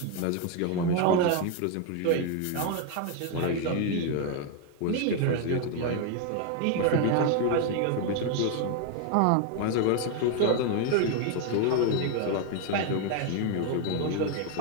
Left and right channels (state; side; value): different; both; correlation 0.01